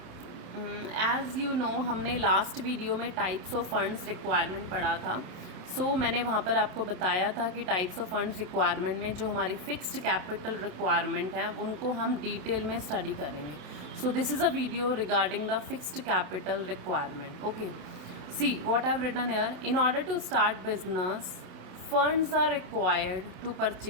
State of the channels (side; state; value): left; late; 27 ms